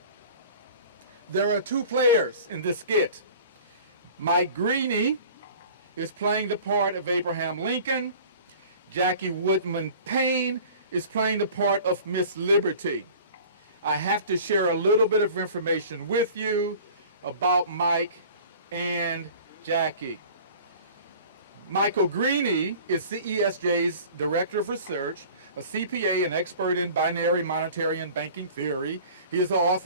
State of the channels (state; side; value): inverted; both; correlation -0.44